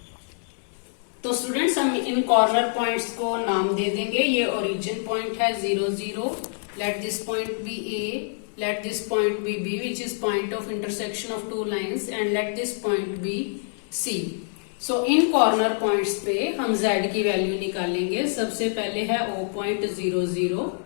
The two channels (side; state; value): right; silent; digital silence